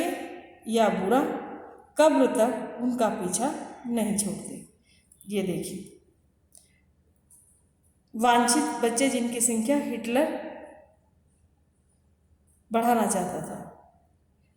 या बुरा, कब्र तक उनका पीछा नहीं छोड़ते। ये देखिए, वांछित बच्चे जिनकी संख्या हिटलर बढ़ाना चाहता था।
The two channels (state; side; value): identical; both; correlation 1.00